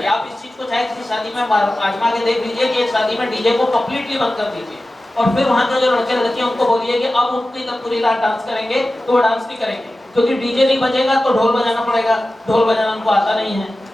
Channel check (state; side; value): normal; both; correlation 0.95